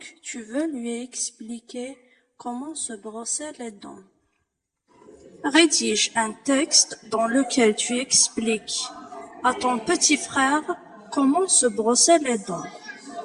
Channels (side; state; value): both; identical; correlation 1.00